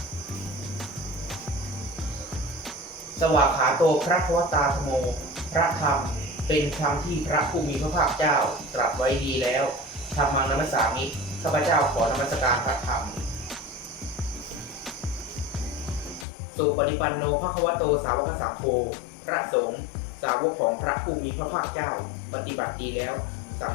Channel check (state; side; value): drops out; right; at 16.2 s